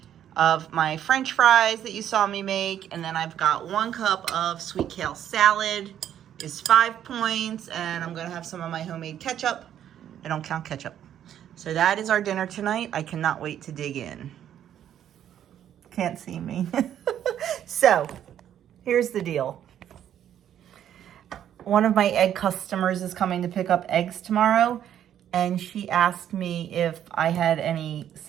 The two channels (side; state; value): left; quieter; 10.3 dB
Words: of my French fries that you saw me make. And then I've got 1 cup of sweet kale salad is 5 points. And I'm going to have some of my homemade ketchup. I don't count ketchup. So that is our dinner tonight. I cannot wait to dig in. Can't see me. So here's the deal. One of my egg customers is coming to pick up eggs tomorrow. And she asked me if I had any